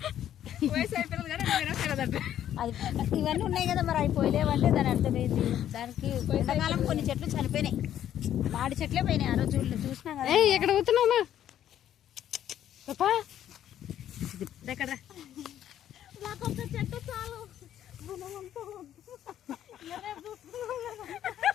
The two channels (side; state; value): right; quieter; 11.0 dB